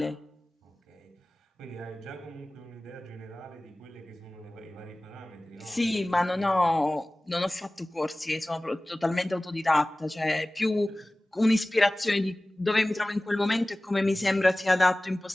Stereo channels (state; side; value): normal; both; correlation 0.98